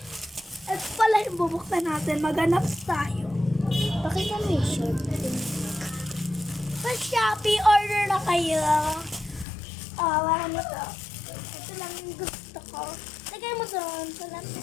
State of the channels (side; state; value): right; drops out; at 9.5 s